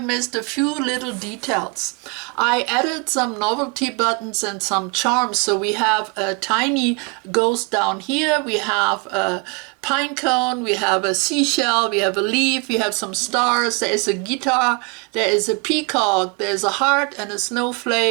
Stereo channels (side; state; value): left; quieter; 32.0 dB